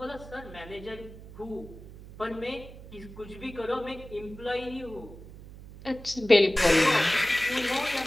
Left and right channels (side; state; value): right; noise; hum, 16 dB below the sound